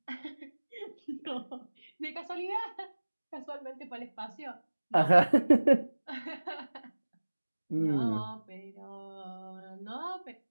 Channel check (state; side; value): inverted; both; correlation -1.00